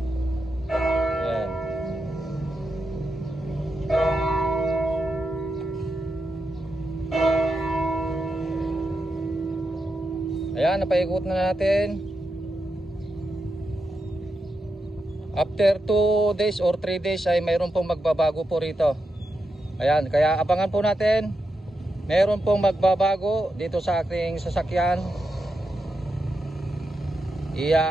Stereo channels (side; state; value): both; normal; correlation 0.86